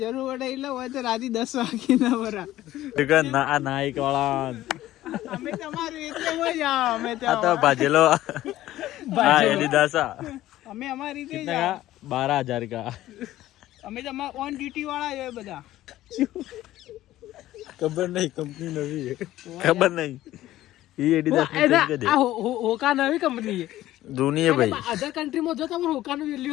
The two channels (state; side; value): quieter; right; 14.7 dB